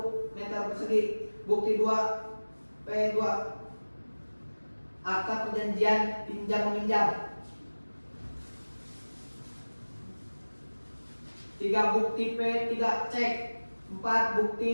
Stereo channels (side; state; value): both; inverted; correlation -1.00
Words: meter persegi. Bukti 2 P2 akta perjanjian pinjam meminjam. 3. Bukti P3 cek. 4.